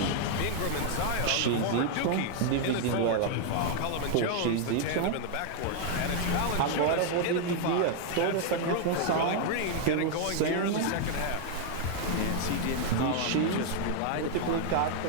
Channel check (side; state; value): both; different; correlation 0.00